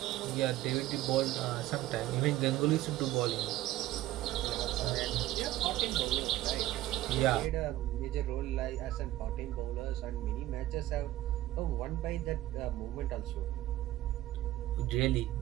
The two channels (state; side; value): quieter; left; 15.3 dB